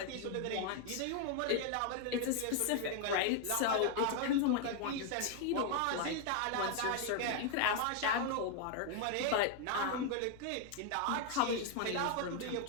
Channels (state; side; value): different; both; correlation 0.01